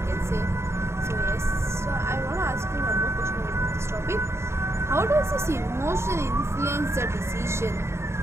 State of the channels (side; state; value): left; late; 0.13 ms